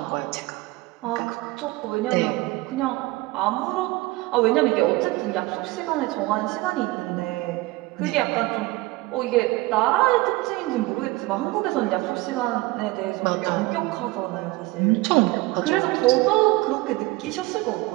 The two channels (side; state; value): left; quieter; 20.7 dB